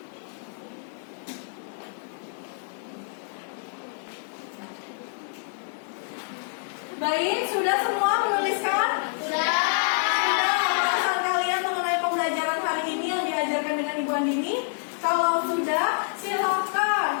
Baik, sudah semua menuliskan? Sudah. Pembahasan kalian mengenai pembelajaran hari ini yang diajarkan dengan Ibu Andini? Kalau sudah, silakan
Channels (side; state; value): right; silent; digital silence